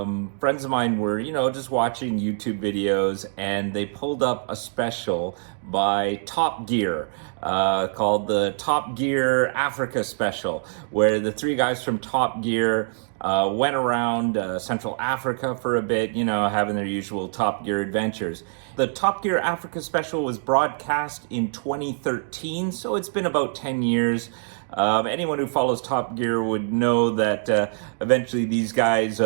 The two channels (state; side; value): silent; left; digital silence